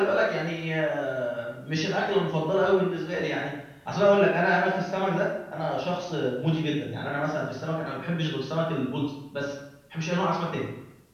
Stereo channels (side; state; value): both; identical; correlation 1.00